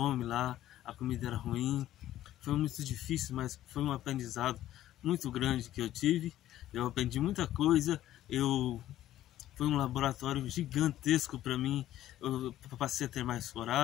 lá, a comida era ruim, foi muito difícil, mas foi um aprendizado muito grande que eu tive. Eu aprendi muita coisa, foi um laboratório gigantesco para mim. Eu passei a ter mais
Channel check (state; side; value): quieter; right; 13.3 dB